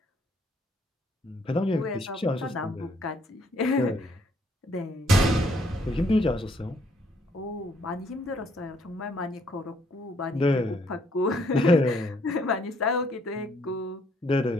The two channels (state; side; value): normal; both; correlation 0.68